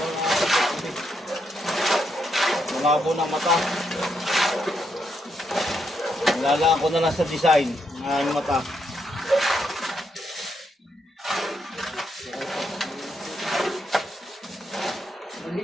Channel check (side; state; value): both; normal; correlation 0.79